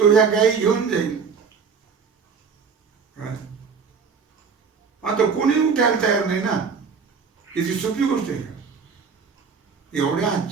ह्या गायी घेऊन जाईल. आता कोणी उठायला तयार नाही ना. याची सोपी गोष्ट आहे का? एवढ्या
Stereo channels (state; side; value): quieter; left; 5.7 dB